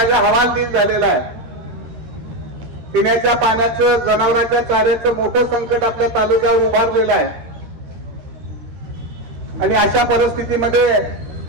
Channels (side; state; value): left; late; 13 ms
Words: हवालदिल झालेला आहे। पिण्याच्या पाण्याचं, जनावरांच्या चाऱ्याचं मोठं संकट आपल्या तालुक्यावर उभारलेलं आहे आणि अशा परिस्थितीमध्ये